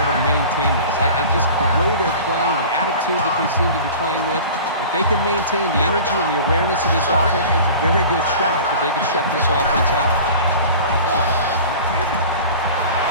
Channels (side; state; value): both; inverted; correlation -0.39